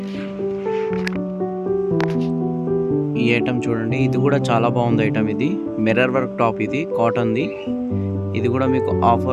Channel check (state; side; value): identical; both; correlation 1.00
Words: ఈ ఐటమ్ చూడండి, ఇది కూడా చాలా బాగుంది ఐటమ్. ఇది మిర్రర్ వర్క్ టాప్, ఇది కాటన్ది. ఇది కూడా మీకు